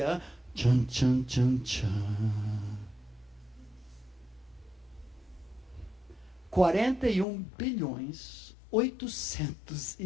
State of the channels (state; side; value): drops out; right; at 7.2 s